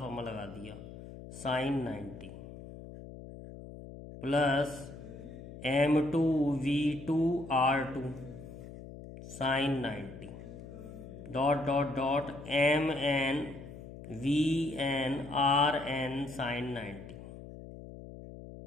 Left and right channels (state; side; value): noise; left; hum, 14 dB below the sound